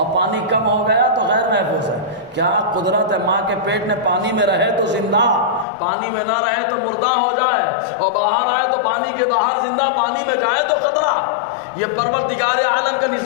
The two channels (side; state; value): right; drops out; at 5.7 s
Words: پانی کم ہو گیا تو غیر محفوظ ہے. کیا قدرت ہے ماں کے پیٹ میں پانی میں رہے تو زندہ، پانی میں نہ رہے تو مردہ ہو جائے، اور باہر آئے تو پانی کے باہر زندہ، پانی میں جائے تو خطرہ. یہ پروردگار عالم کا